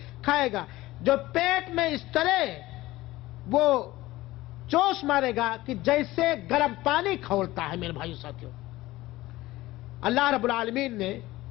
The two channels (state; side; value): quieter; right; 17.8 dB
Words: کھائے گا, جو پیٹ میں اس طرح وہ جوش مارے گا کہ جیسے گرم پانی کھولتا ہے میرے بھائیو ساتھیوں۔ اللہ رب العالمین نے